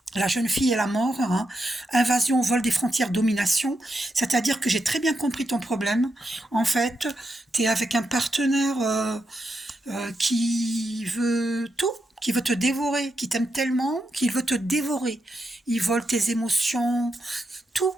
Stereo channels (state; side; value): normal; both; correlation 0.84